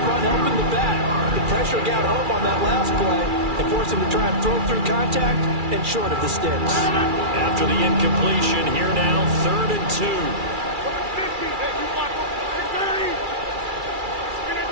helping the back. The pressure got home on that last play and forced him to try and throw through contact and short of the sticks. After the incompletion, here now, 3rd and 2.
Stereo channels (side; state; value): left; late; 2.3 ms